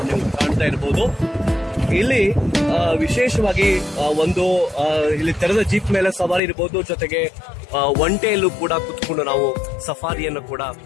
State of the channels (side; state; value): right; drops out; at 6.4 s